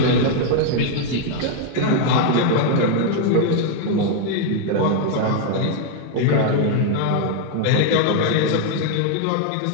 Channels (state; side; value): different; both; correlation 0.00